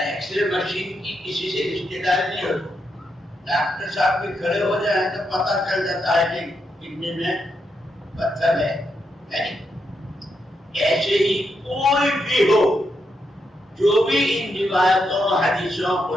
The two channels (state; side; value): normal; both; correlation 0.82